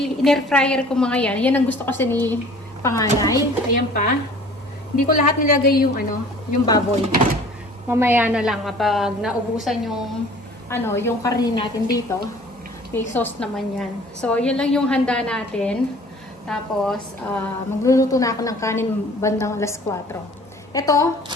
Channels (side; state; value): both; normal; correlation 0.49